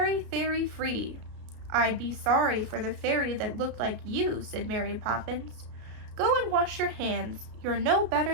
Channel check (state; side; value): late; left; 33 ms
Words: free." "I'd be sorry for the fairy that looked like you," said Mary Poppins. "Go and wash your hands. You're no